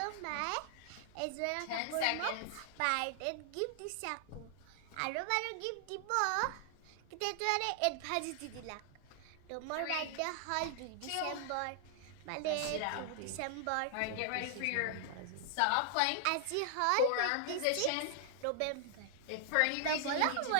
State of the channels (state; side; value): different; both; correlation 0.00